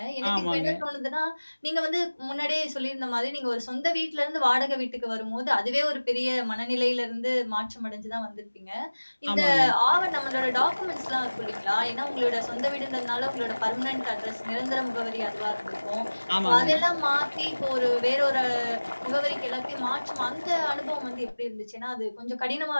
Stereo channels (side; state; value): both; inverted; correlation -1.00